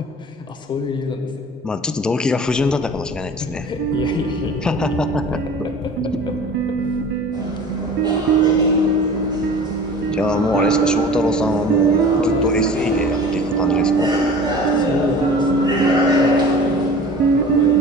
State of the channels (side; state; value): both; normal; correlation 0.41